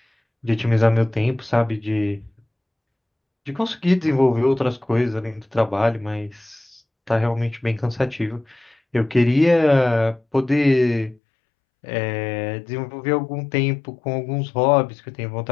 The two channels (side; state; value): right; drops out; at 11.2 s